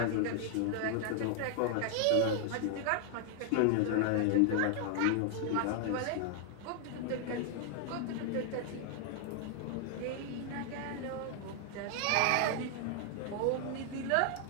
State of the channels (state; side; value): different; both; correlation 0.00